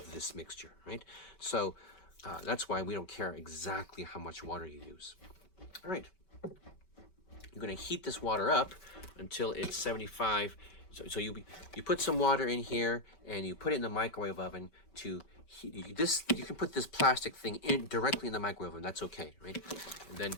this mixture, right? So that's why we don't care exactly how much water you use. All right. You're going to heat this water up until it's 75. So you put some water in here and you put it in the microwave oven to heat this. You can put this plastic thing in directly in the microwave oven. That's okay, right? And then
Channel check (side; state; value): right; late; 5.2 ms